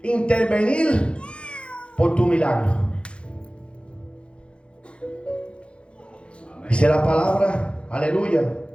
Intervenir por tu milagro. Dice la palabra, aleluya,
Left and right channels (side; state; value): right; late; 0.058 ms